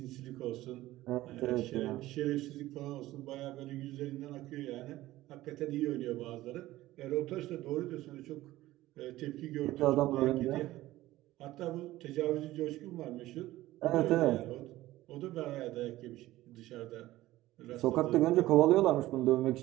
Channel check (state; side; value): quieter; left; 16.4 dB